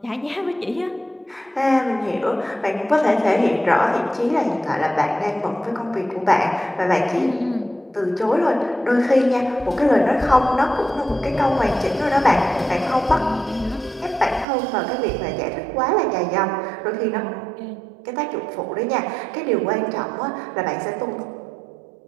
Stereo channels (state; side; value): drops out; left; at 14.5 s